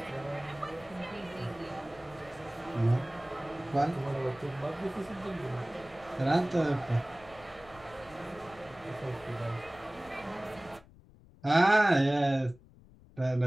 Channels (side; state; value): left; noise; rumble, 24 dB below the sound